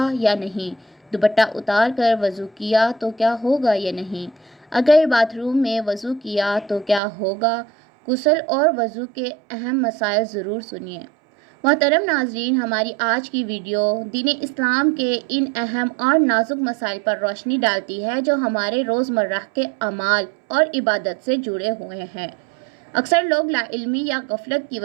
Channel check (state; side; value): drops out; left; at 7.0 s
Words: یا نہیں؟ دوپٹہ اتار کر وضو کیا تو کیا ہوگا یا نہیں؟ اگر باتھ روم میں وضو کیا تو کیا ہوگا؟ غسل اور وضو کے اہم مسائل ضرور سنیے۔ محترم ناظرین، ہماری آج کی ویڈیو دین اسلام کے ان اہم اور نازک مسائل پر روشنی ڈالتی ہے جو ہمارے روزمرہ کے اعمال اور عبادت سے جڑے ہوئے ہیں۔ اکثر لوگ لا علمی یا غفلت کی